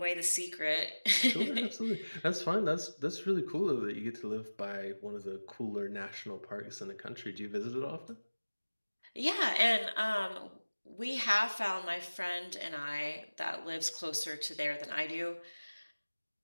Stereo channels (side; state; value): both; inverted; correlation -1.00